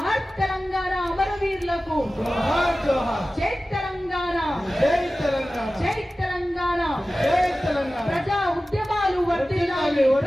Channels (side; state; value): both; normal; correlation 0.96